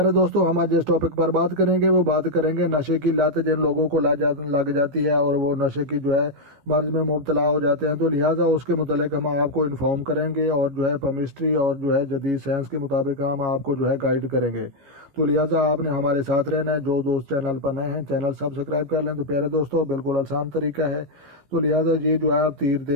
دوستو، ہم آج جس ٹاپک پر بات کریں گے وہ بات کریں گے نشے کی لت جن لوگوں کو لگ جاتی ہے اور وہ نشے کی مرض میں مبتلا ہو جاتے ہیں، تو لہٰذا اس کے متعلق ہم آپ کو انفارم کریں گے اور کیمسٹری اور جدید سائنس کے مطابق ہم آپ کو گائیڈ کریں گے۔ تو لہٰذا آپ نے ہمارے ساتھ رہنا ہے۔ جو دوست چینل پر نئے ہیں چینل سبسکرائب کر لیں۔ تو پیارے دوستو، بالکل آسان طریقہ ہے۔ تو لہٰذا یہ آپ تیر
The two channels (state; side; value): late; left; 15 ms